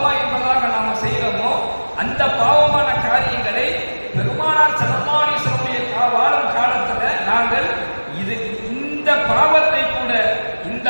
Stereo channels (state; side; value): inverted; both; correlation -1.00